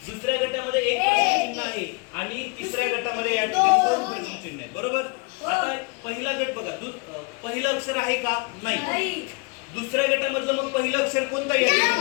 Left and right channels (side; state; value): right; quieter; 31.7 dB